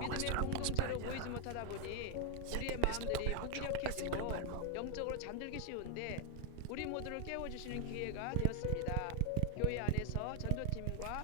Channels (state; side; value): different; both; correlation 0.01